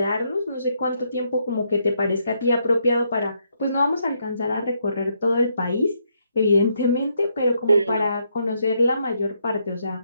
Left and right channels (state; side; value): inverted; both; correlation -0.76